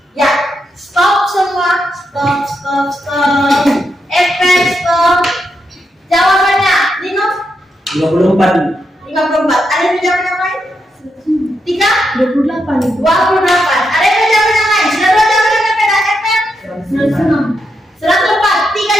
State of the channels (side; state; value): both; normal; correlation 0.83